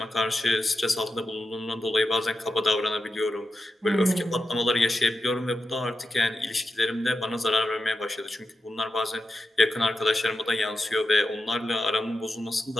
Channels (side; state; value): both; normal; correlation 0.89